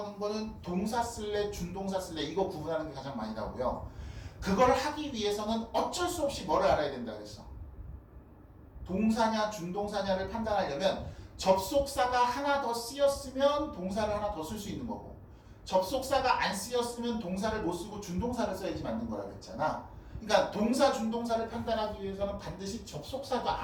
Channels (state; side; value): identical; both; correlation 1.00